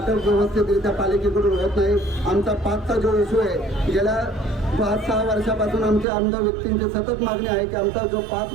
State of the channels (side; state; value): left; drops out; at 6.1 s